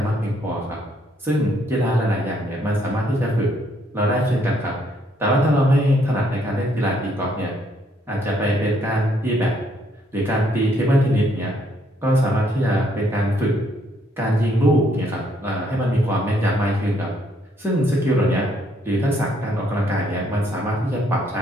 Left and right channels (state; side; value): normal; both; correlation 0.69